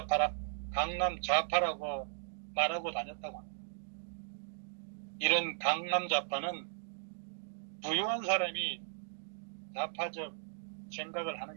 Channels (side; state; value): left; silent; digital silence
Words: 말하고 다녔다고 합니다. 이런 강남 좌파는 부유한 사람이 좌파적 생각을